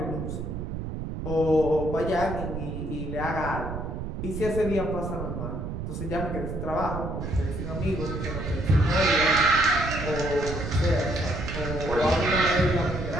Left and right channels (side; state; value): right; noise; rumble, 5 dB below the sound